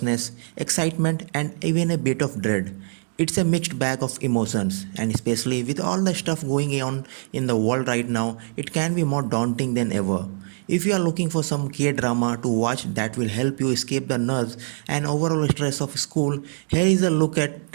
excitement, and even a bit of dread. It's a mixed bag of emotions, and especially with all the stuff going on in the world right now, it can be more daunting than ever. If you are looking for some K-drama to watch that will help you escape the nerves and overall stress of school, here is a look at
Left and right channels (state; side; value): silent; left; 63 dB below the other